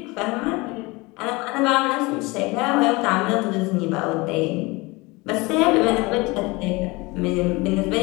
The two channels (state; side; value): quieter; right; 24.2 dB